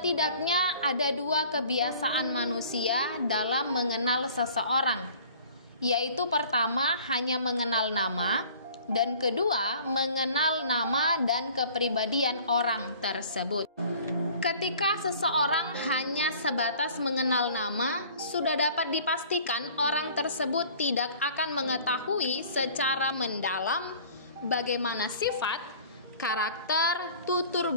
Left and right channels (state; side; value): inverted; both; correlation -0.49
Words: ada dua kebiasaan manusia dalam mengenal seseorang, yaitu pertama hanya mengenal nama, dan kedua mengenal nama dan kepribadian orang tersebut. Ketika seseorang hanya sebatas mengenal nama, sudah dapat dipastikan orang tersebut tidak akan mengetahui secara mendalam bagaimana sifat, karakter, tutur